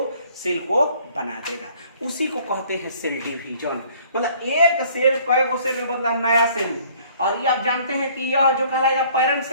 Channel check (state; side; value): inverted; both; correlation -0.57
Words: सेल को बना देगा, उसी को कहते हैं सेल डिवीजन। मतलब एक सेल कई गो सेल में बदला नया सेल, और ये आप जानते हैं कि यह जो कहलाएगा पेरेंट